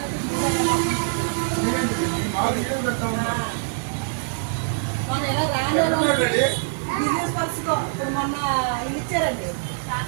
మన ఎలా రాను బిజినెస్ పర్సన్ ఇప్పుడు మొన్న ఇది ఇచ్చారండి.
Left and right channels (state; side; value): silent; left; digital silence